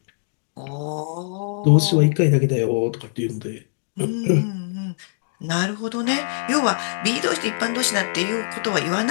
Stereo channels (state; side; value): silent; right; digital silence